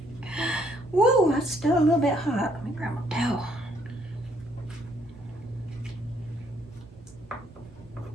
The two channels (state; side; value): normal; both; correlation 0.67